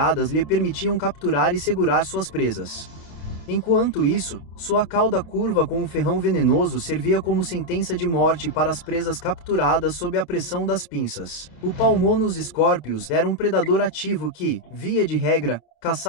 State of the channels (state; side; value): late; right; 28 ms